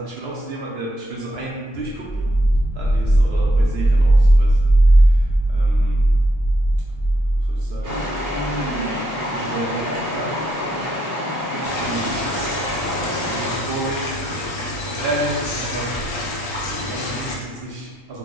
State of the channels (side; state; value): both; normal; correlation 0.78